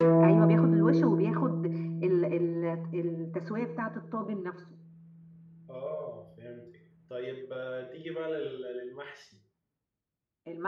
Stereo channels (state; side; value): identical; both; correlation 1.00